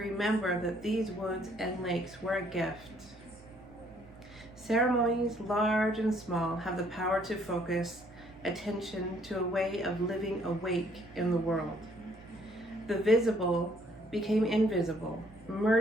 that these woods and lakes were a gift. Ceremonies, large and small, have the power to focus attention to a way of living awake in the world. The visible became invisible,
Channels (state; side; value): normal; both; correlation 0.64